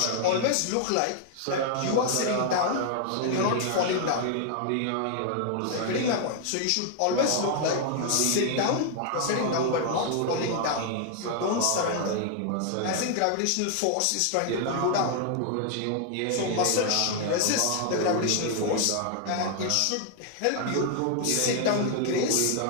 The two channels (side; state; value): both; different; correlation 0.00